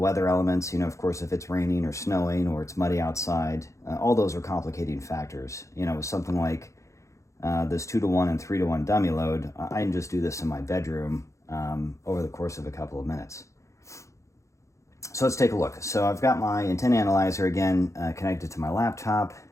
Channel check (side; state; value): right; late; 0.15 ms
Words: elements, of course, if it's raining or snowing or it's muddy outside, all those are complicating factors. With something like this 2-to-1 and 3-to-1 dummy load, I can just do this in my bedroom over the course of a couple of minutes. So let's take a look. So I've got my antenna analyzer again connected to my laptop.